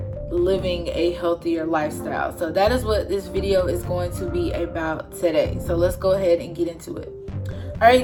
living a healthier lifestyle. So that is what this video is going to be about today. So let's go ahead and get into it. Alright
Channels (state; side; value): identical; both; correlation 1.00